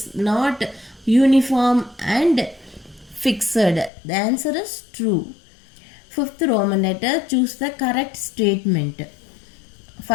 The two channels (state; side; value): drops out; right; at 3.9 s